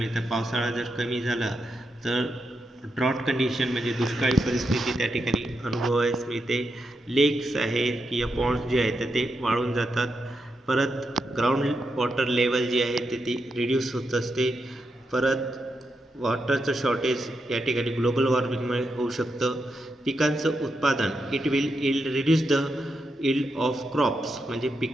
पावसाळा जर कमी झाला तर ड्रॉट कंडिशन म्हणजे दुष्काळी परिस्थिती त्या ठिकाणी अनुभवायला मिळते. लेक्स आहेत किंवा पॉन्ड्स जे आहेत तर ते वाळून जातात. परत ग्राउंड वॉटर लेवल जी आहे ते ती रिड्यूस होत असते. परत वॉटरचं शॉर्टेज या ठिकाणी ग्लोबल वॉर्मिंगमुळे होऊ शकतं. पिकांचं उत्पादन it will reduce the yield of crops म्हणजे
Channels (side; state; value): both; normal; correlation 0.85